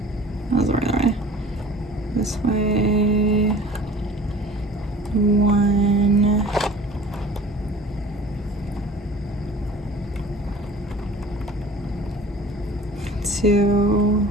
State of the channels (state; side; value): normal; both; correlation 0.45